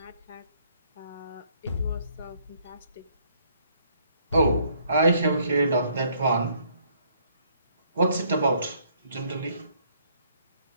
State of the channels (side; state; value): both; inverted; correlation -0.67